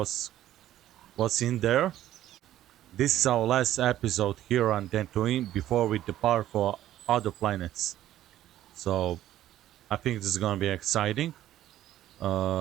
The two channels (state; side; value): quieter; left; 13.0 dB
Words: in there. This is our last episode here on Dantooine before we depart for other planets. So I think this is gonna be exciting.